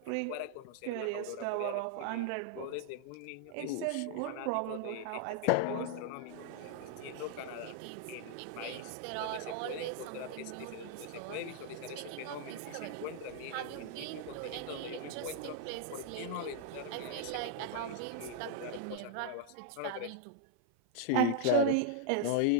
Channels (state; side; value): different; both; correlation 0.00